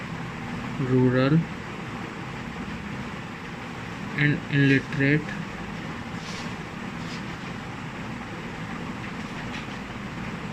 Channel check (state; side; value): identical; both; correlation 1.00